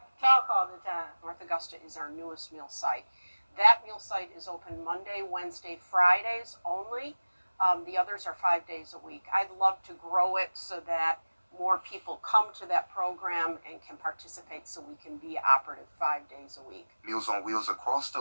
to talk all the time. North Augusta is our newest meal site. That meal site is open Monday, Wednesday, Fridays only. The others are 5 days a week. I'd love to grow it so that more people come to that program and can participate so we can be operative 5 days a week. Meals on Wheels across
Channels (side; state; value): both; inverted; correlation -1.00